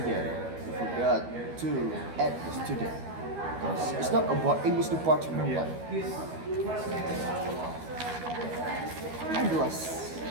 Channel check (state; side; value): late; left; 12 ms